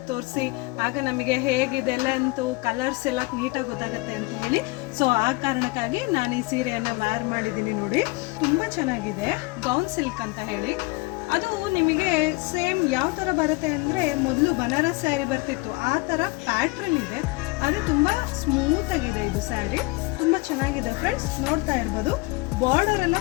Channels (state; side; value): quieter; right; 24.7 dB